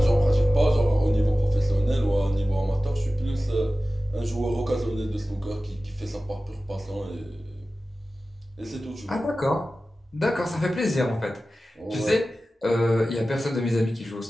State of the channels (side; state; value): both; normal; correlation 0.95